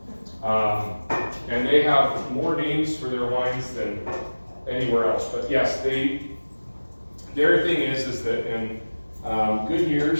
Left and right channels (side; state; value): both; inverted; correlation -1.00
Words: And they have more names for their wines than anywhere else. But yes, their thing is that in good